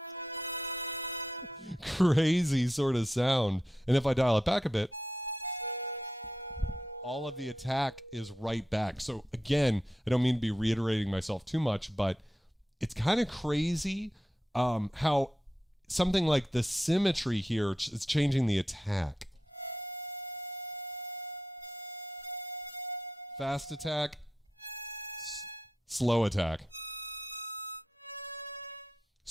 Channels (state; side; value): normal; both; correlation 0.88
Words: crazy sort of sound. And if I dial it back a bit, all of the attack is right back. So again, I don't mean to be reiterating myself too much, but it's kind of crazy how something like the symmetry here is changing the attack. Fast attack, slow attack.